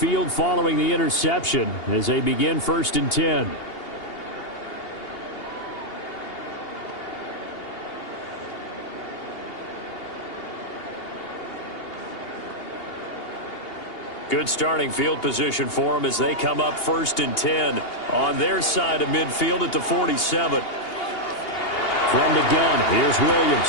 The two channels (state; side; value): late; right; 2.8 ms